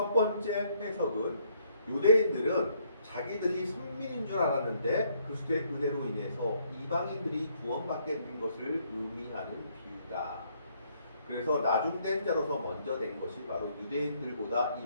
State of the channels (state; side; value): inverted; both; correlation -0.69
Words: 번째 해석은 유대인들은 자기들이 선민인 줄 알았는데 그리스도의 은혜로 인해서 이방인들이 구원받게 된 것을 의미하는 비유다. 그래서 나중된 자로서 먼저 된 것이 바로 유대인들보다